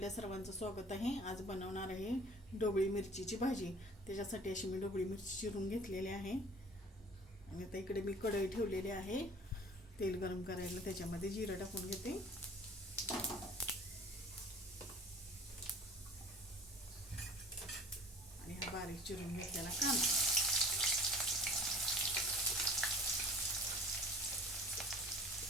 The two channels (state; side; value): normal; both; correlation 0.46